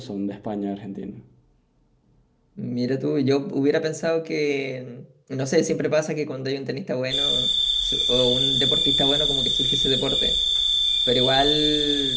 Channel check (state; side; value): identical; both; correlation 1.00